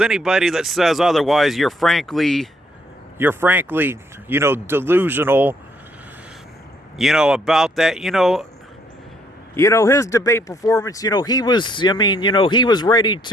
that says otherwise, you're frankly, delusional, about that. His debate performance, he was ready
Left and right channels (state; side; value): normal; both; correlation 0.69